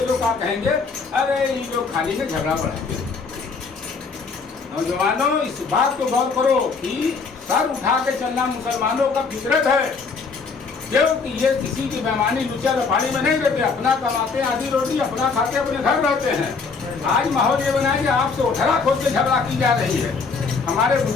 लोग क्या कहेंगे? अरे ये लोग खाली से झगड़ा बढ़ाएंगे। नौजवानों, इस बात को गौर करो कि सर उठा के चलना मुसलमानों का फितरत है, क्योंकि ये किसी की बेईमानी लुचा लफाड़ी में नहीं रहते। अपना कमाते आधी रोटी, अपना खाते, अपने घर रहते हैं। आज माहौल ये बनाए कि आपसे उठरा खोद के झगड़ा की जा रही है। हमारे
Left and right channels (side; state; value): right; quieter; 4.8 dB